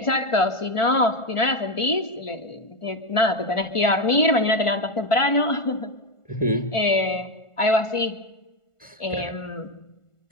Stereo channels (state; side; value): late; right; 1.5 ms